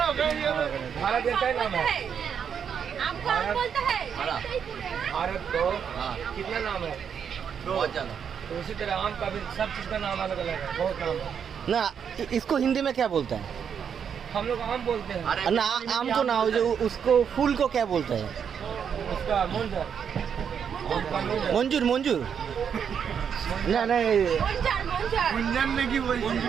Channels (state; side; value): quieter; left; 7.5 dB